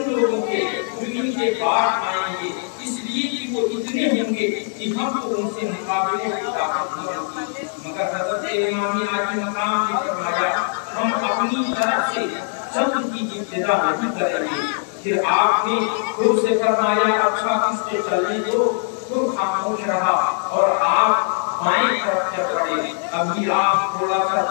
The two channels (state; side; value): silent; right; 60 dB below the other